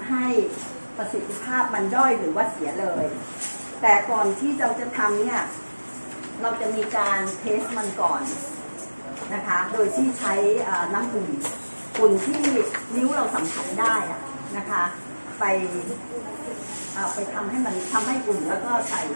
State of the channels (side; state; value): both; inverted; correlation -1.00